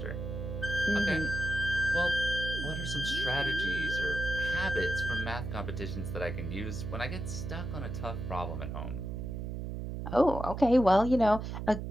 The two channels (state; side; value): noise; right; hum, 5 dB below the sound